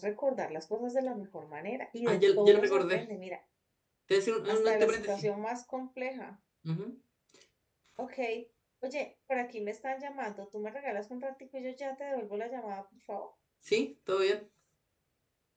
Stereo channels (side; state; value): both; identical; correlation 1.00